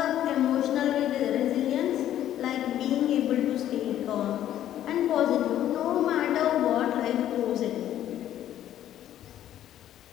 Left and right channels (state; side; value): quieter; right; 11.8 dB